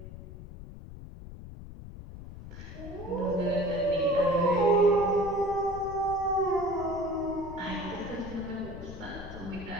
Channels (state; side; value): noise; left; rumble, 13 dB below the sound